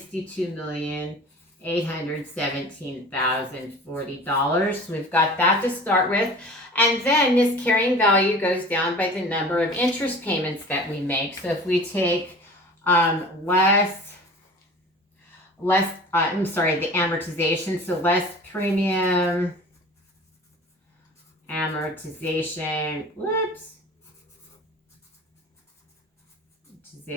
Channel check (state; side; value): normal; both; correlation 0.41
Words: So we've got that to start with. And then this carrying value goes down by the number of interest payments that we make. So if we take the amortization, so less premium amortization,